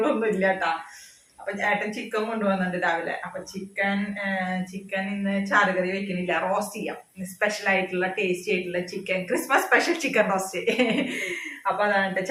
ഒന്നും ഇല്ല കേട്ടാ. അപ്പൊ ചേട്ടൻ ചിക്കൻ കൊണ്ടുവന്നിട്ടുണ്ട് രാവിലെ. അപ്പൊ ചിക്കൻ ഇന്ന് ചാറുകറി വെക്കണില്ല, റോസ്റ്റ് ചെയ്യാം. സ്പെഷ്യൽ ആയിട്ടുള്ള ടേസ്റ്റി ആയിട്ടുള്ള chicken, Christmas special chicken roast. അപ്പൊ അതാണ്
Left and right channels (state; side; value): identical; both; correlation 1.00